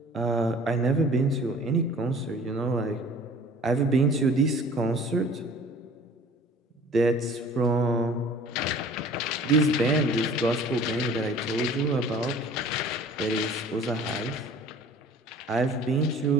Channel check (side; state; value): both; normal; correlation 0.47